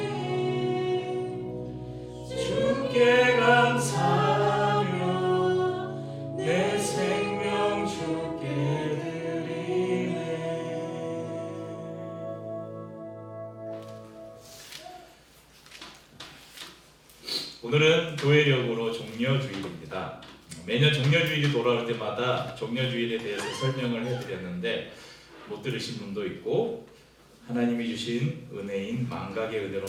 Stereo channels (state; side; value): identical; both; correlation 1.00